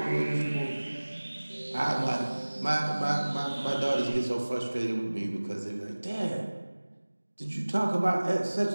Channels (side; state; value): both; inverted; correlation -1.00